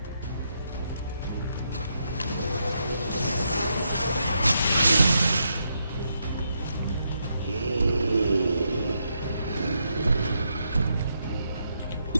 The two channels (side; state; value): both; inverted; correlation -0.80